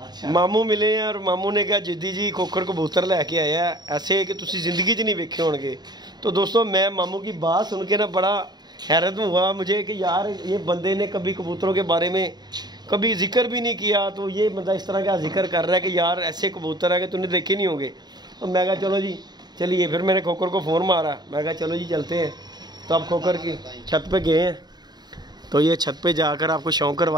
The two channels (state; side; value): late; left; 0.20 ms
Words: मामू मिले हैं और मामू ने कहा जिद्दी जी खोखर कबूतर लैके आया ऐसे कि तुसी जिंदगी च नहीं वेखे होंगे। तो दोस्तों मैं मामू की बात सुन के ना बड़ा हैरत हुआ मुझे कि यार ये बंदे ने कभी कबूतरों के बारे में कभी जिक्र भी नहीं किया, तो ये बंदा इस तरह का जिक्र कर रहा है कि यार ऐसे कबूतर है कि तूने देखे नहीं होंगे। तो मैं कहा चलो जी चलिए, फिर मैंने खोखर को फ़ोन मारा, मैं कहा चलो जी चलते हैं। तो अब खोखर की छत पे गए हैं, तो ये छत पे जाकर आपको शौक